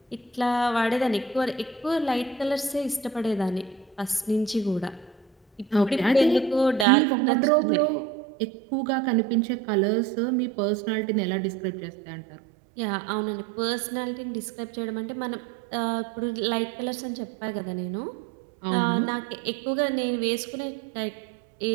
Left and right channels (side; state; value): left; drops out; at 6.9 s